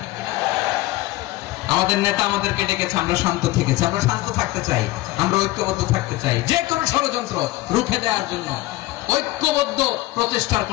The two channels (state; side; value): quieter; right; 18.3 dB